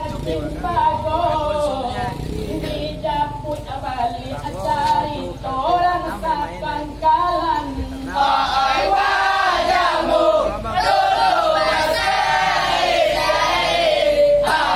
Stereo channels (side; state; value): both; identical; correlation 1.00